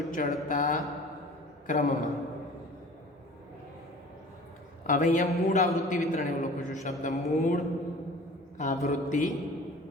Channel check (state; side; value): normal; both; correlation 0.44